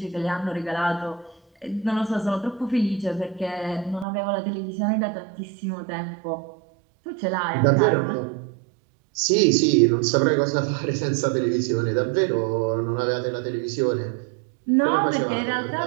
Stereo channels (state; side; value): drops out; left; at 4.0 s